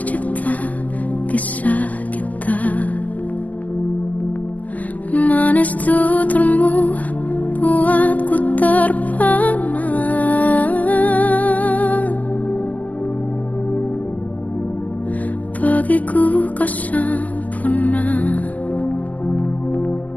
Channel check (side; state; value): right; late; 0.078 ms